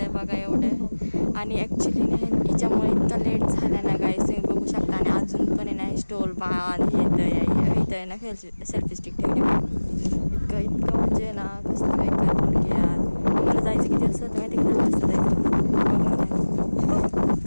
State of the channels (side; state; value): both; inverted; correlation -1.00